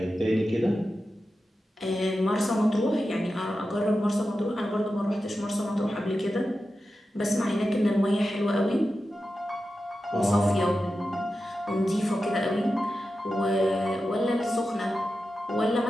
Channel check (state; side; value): normal; both; correlation 0.92